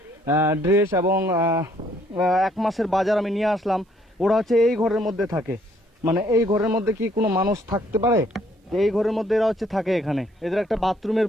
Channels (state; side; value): normal; both; correlation 0.66